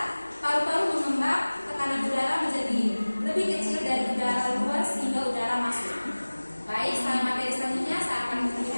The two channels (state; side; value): inverted; both; correlation -1.00